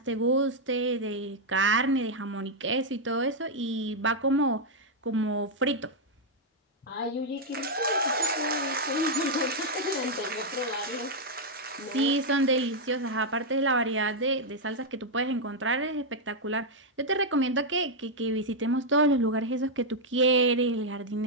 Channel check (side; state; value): both; normal; correlation -0.02